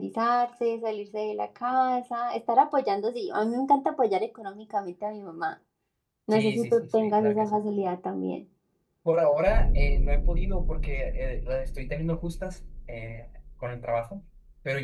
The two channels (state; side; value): identical; both; correlation 1.00